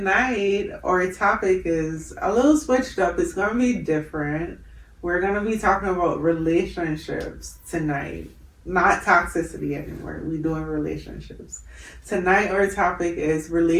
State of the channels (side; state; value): both; identical; correlation 1.00